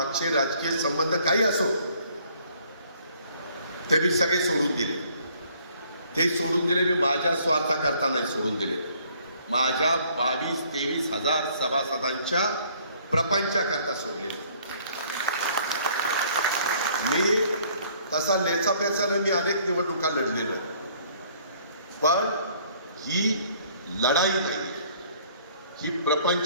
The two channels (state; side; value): inverted; both; correlation -0.60